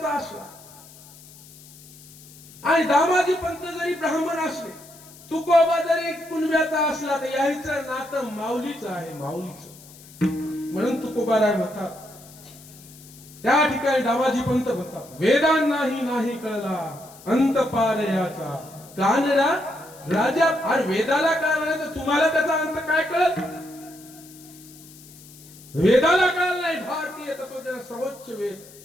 असला आणि दामाजी पंत जरी ब्राह्मण असले, तुकोबा जरी कुणब्याचा असला, तर याचं नातं माऊलीचं आहे. माऊलीचं. म्हणून तुकोबाराय म्हणतात, त्या ठिकाणी दामाजी पंत म्हणतात, वेदांनाही नाही कळला अंत पार याचा कानरा राजा. आणि वेदाला कळला नाही तर तुम्हाला त्याचा अंत काय कळत? वेदाला कळलं नाही भारतीय तत्वज्ञान सर्वोच्च वेद,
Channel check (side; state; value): left; noise; hiss, 21 dB below the sound